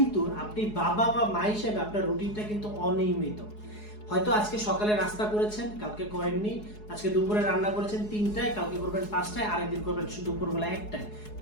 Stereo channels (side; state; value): right; late; 4.8 ms